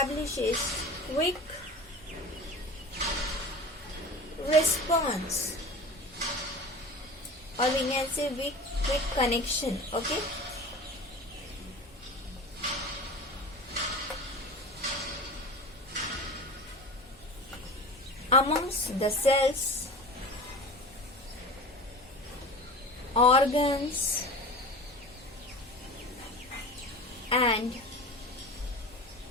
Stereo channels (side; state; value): both; normal; correlation 0.35